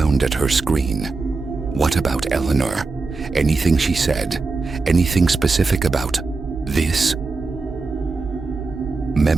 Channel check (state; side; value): quieter; left; 4.0 dB